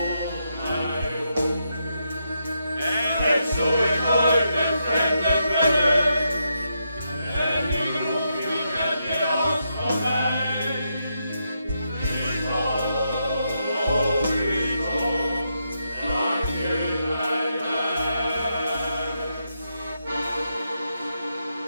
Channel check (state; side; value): inverted; both; correlation -0.82